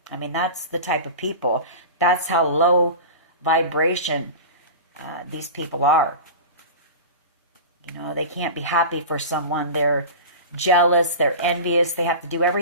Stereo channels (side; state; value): both; inverted; correlation -0.31